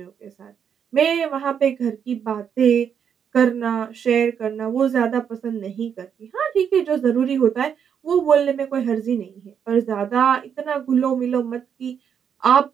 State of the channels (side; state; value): left; quieter; 7.8 dB